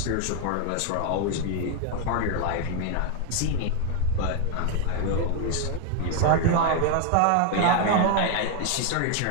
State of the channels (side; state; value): both; different; correlation 0.01